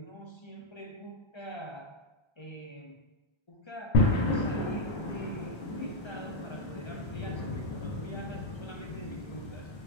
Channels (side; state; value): right; late; 1.3 ms